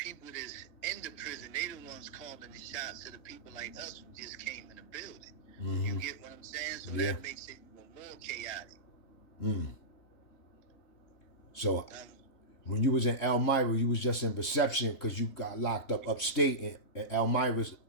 that's in the prison, they the ones calling the shots to the people like us who just came in the building. Mm-hmm. You get what I'm saying? So that makes it even more chaotic. So when you was in Elmira, you was just in reception because you got locked up upstate, in Elmira's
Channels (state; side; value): late; right; 3.7 ms